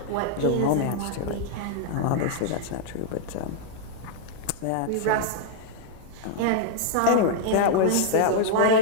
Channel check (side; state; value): both; different; correlation -0.01